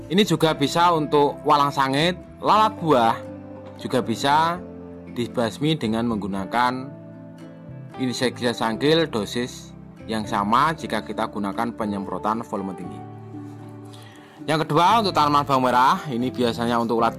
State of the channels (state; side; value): identical; both; correlation 1.00